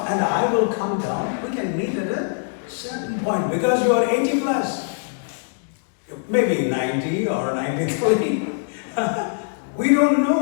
and I will come down. We can meet at a certain point because you are 80 plus. Maybe 90 or 93. We don't know,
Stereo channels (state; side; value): silent; right; digital silence